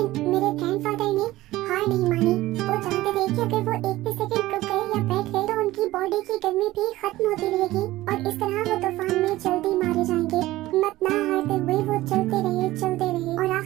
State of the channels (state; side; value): quieter; left; 17.0 dB